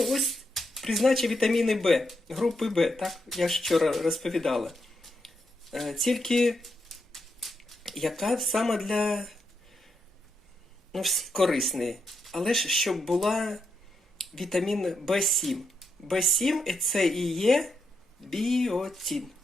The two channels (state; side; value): normal; both; correlation 0.82